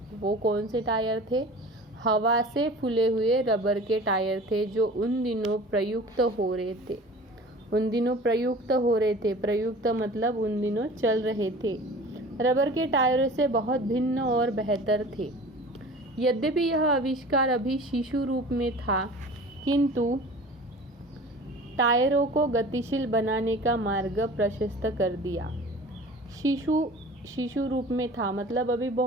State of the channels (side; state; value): both; normal; correlation 0.41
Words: वो कौन से टायर थे, हवा से फूले हुए रबर के टायर थे, जो उन दिनों प्रयुक्त हो रहे थे। प्रयुक्त मतलब उन दिनों चल रहे थे। रबर के टायरों से बहुत भिन्न और बेहतर थे। यद्यपि यह आविष्कार अभी शिशु रूप में था, किंतु टायरों को गतिशील बनाने का मार्ग प्रशस्त कर दिया। शिशु रूप में था मतलब अभी